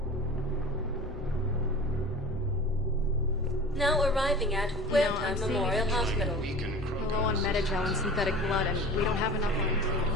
Now arriving at Huerta Memorial Hospital. We're low on Metagel and synthetic blood, and we don't have enough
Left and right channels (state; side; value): normal; both; correlation 0.38